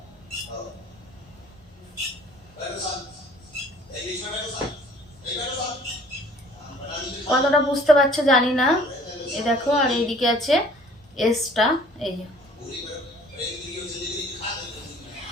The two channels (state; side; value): normal; both; correlation 0.53